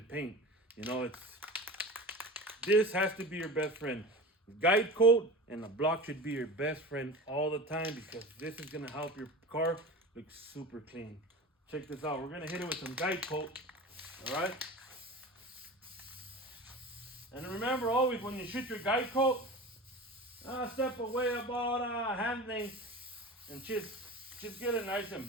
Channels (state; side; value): normal; both; correlation 0.32